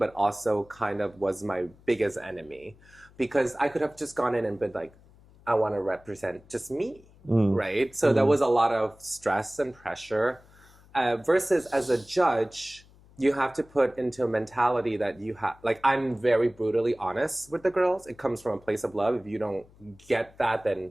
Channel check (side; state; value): left; noise; hum, 26 dB below the sound